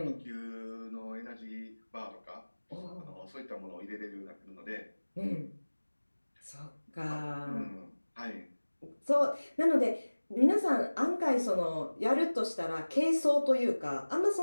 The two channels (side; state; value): both; inverted; correlation -1.00